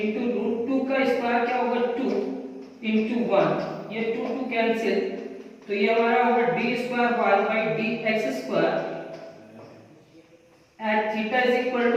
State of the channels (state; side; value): identical; both; correlation 1.00